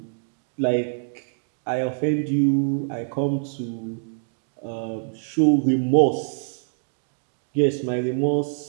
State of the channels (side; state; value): left; silent; digital silence